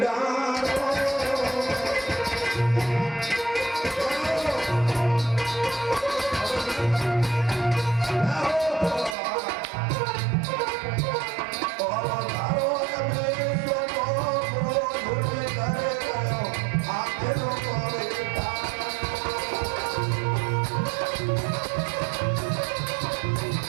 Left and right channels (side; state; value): left; drops out; at 9.2 s